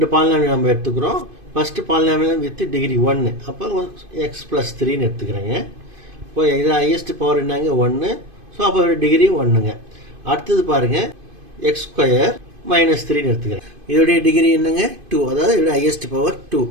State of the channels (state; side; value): late; left; 2.5 ms